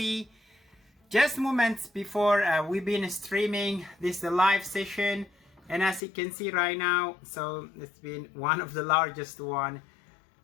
Just moments before we've been streaming this live session, and as you can see right now, so it's been one of the largest one.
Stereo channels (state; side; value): drops out; right; at 6.0 s